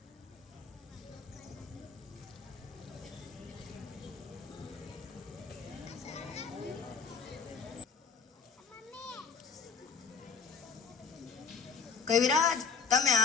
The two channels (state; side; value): quieter; right; 5.6 dB